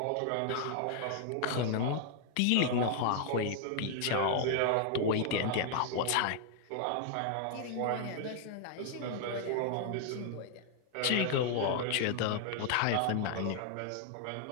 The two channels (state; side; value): different; both; correlation 0.00